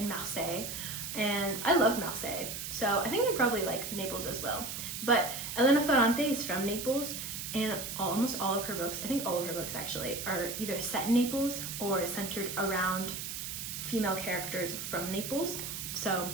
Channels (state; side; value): noise; right; hiss, 6 dB below the sound